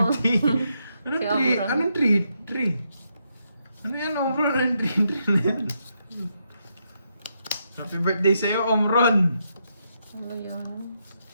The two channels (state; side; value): inverted; both; correlation -0.80